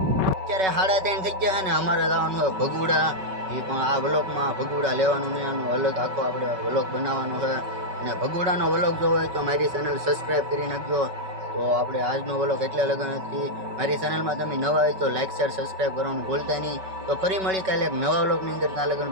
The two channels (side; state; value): left; late; 5.3 ms